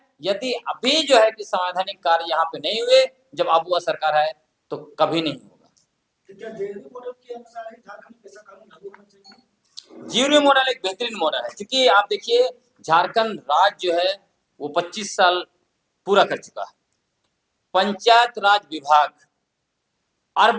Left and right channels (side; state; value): both; identical; correlation 1.00